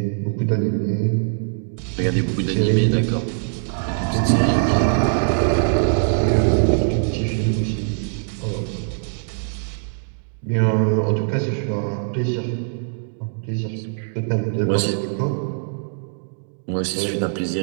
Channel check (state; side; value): silent; left; digital silence